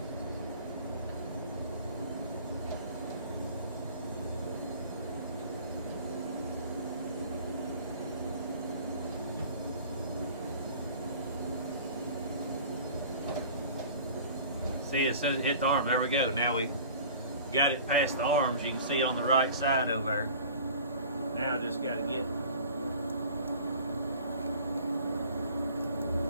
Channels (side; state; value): both; inverted; correlation -0.45